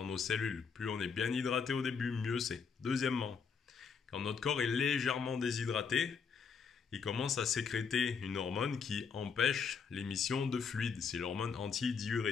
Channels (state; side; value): quieter; right; 6.0 dB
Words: nos cellules. Plus on est bien hydraté au début, mieux c'est. Deuxièmement, quand notre corps est légèrement déshydraté, il commence à sécréter une hormone qui empêche l'émission de fluide. C'est l'hormone